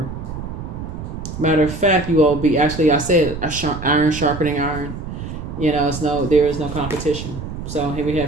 Matter of fact, you all be, actually I said iron sharpening iron. There is no competition. So here we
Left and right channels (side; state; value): right; noise; rumble, 8 dB below the sound